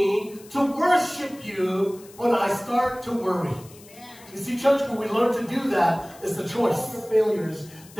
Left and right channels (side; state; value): left; noise; hiss, 22 dB below the sound